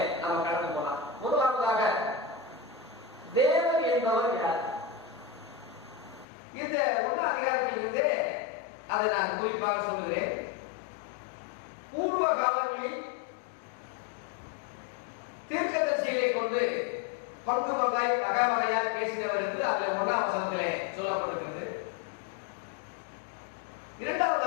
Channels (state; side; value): drops out; right; at 6.2 s